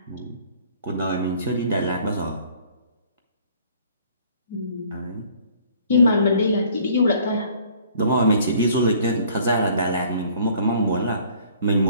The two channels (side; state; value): both; inverted; correlation -0.56